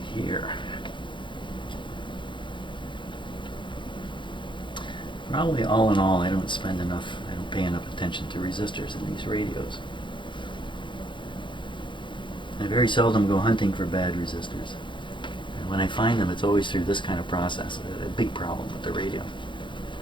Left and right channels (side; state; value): right; late; 0.23 ms